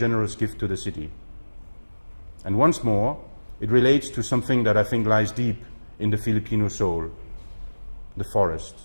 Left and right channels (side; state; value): both; inverted; correlation -1.00